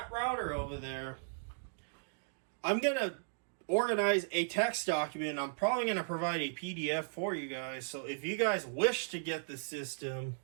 router over there, I'm going to organize a text document. I'm probably going to provide a PDF for you guys. So if you guys wish to get the system,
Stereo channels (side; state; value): left; silent; digital silence